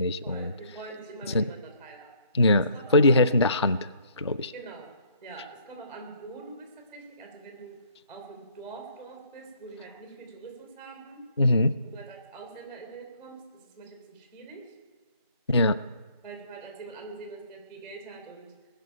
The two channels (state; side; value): inverted; both; correlation -0.60